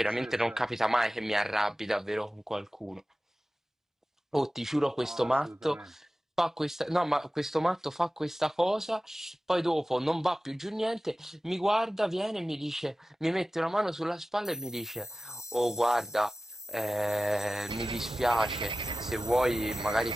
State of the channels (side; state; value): both; normal; correlation 0.95